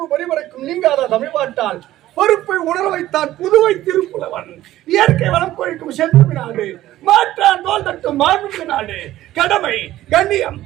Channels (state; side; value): quieter; left; 14.6 dB